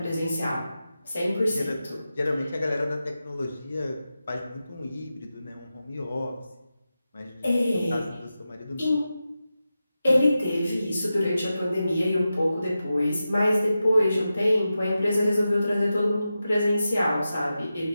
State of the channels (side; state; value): both; inverted; correlation -0.92